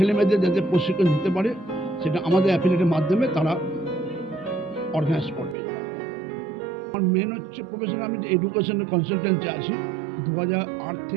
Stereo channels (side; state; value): left; drops out; at 5.6 s